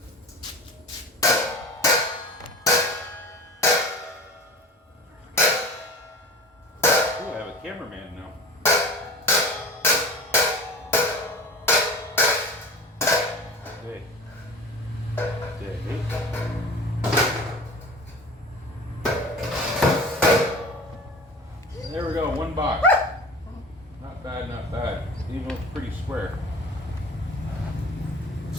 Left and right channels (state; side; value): normal; both; correlation 0.37